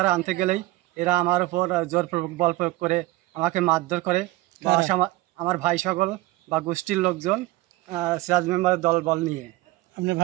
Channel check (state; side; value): quieter; left; 18.4 dB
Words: আনতে গেলেই এরা আমার উপর জোরপূর্বক বল প্রয়োগ করে আমাকে মারধর করে। আমার ভাই সকল বা গোষ্ঠীর লোকজন সিরাজ মেম্বারের দল বল নিয়ে। আপনার